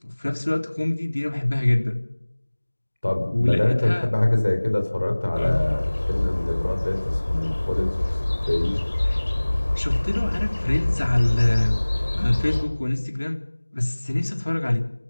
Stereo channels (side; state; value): both; inverted; correlation -1.00